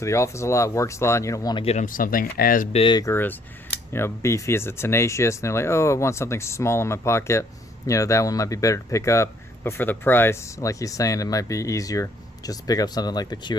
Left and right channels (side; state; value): both; normal; correlation 0.64